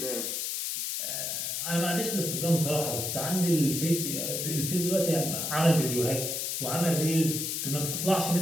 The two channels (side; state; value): left; noise; hiss, 2 dB below the sound